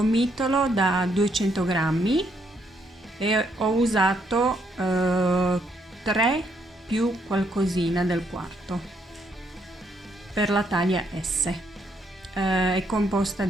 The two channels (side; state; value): both; normal; correlation 0.73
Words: da 200 grammi e ho usato 3 più qualcosina del quarto per la taglia S. È composta